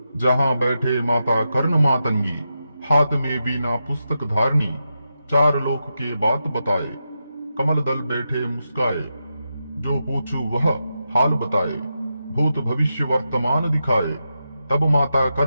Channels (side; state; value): both; inverted; correlation -0.87